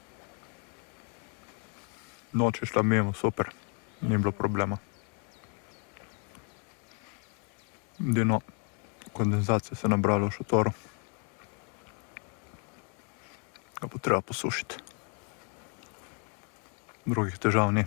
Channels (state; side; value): quieter; right; 39.0 dB